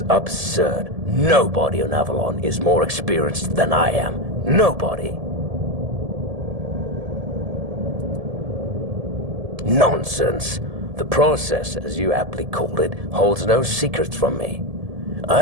absurd. Nobody on Avalon is more experienced than I am. Nobody. Nonsense. The process, as you aptly called it, holds no secrets from me.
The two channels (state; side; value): late; left; 1.7 ms